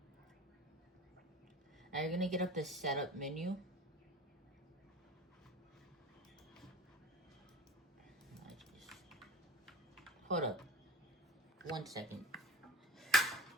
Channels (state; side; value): normal; both; correlation 0.38